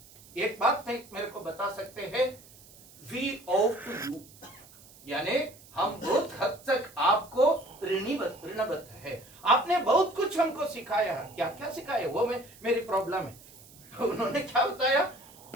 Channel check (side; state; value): right; noise; hiss, 23 dB below the sound